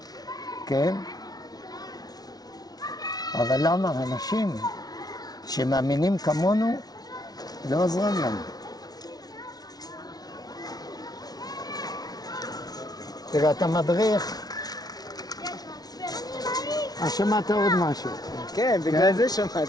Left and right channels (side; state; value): right; late; 0.19 ms